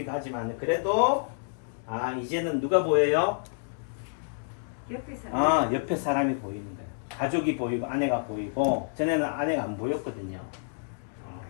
하지만 그래도 아 이제는 누가 보여요? 옆에 사람. 옆에 사람이 보이는 거예요. 가족이 보이고 아내가 보이고 전에는 아내가 안 보였거든요.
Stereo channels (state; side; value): silent; right; digital silence